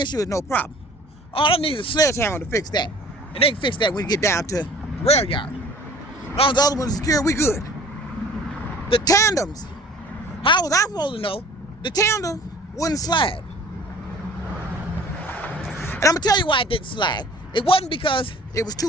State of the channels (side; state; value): both; normal; correlation 0.49